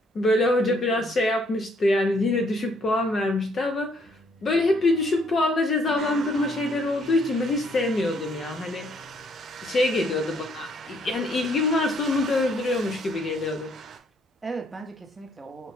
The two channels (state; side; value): normal; both; correlation 0.67